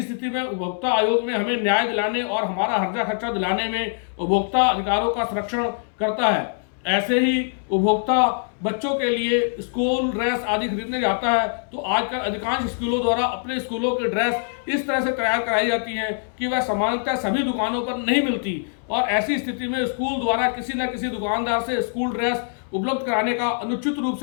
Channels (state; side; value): silent; right; 62 dB below the other